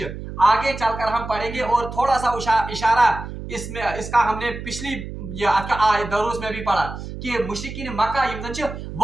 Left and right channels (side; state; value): right; noise; hum, 9 dB below the sound